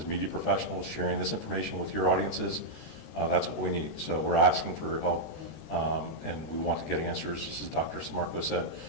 media professionals, sharing this information with your audiences. That's what we need. So we're asking for your help, and we want to get answers. Just as Dr. Sammarco said,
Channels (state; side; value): late; right; 13 ms